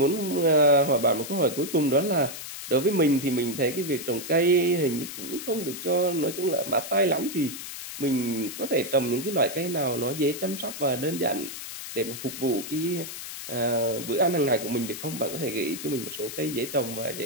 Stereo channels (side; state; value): left; noise; hiss, 9 dB below the sound